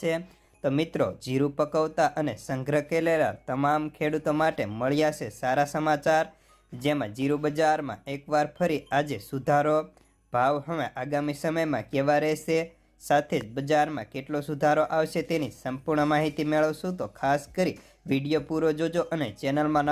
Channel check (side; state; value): both; identical; correlation 1.00